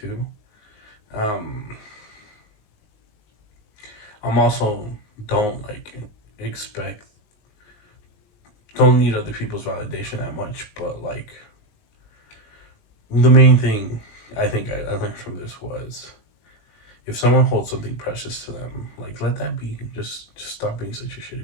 to. I'm also don't need other people's validation that much, but like the main thing I think I learned from this was, if someone holds something precious to them, like, let that be. Just stop being such a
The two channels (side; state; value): right; late; 19 ms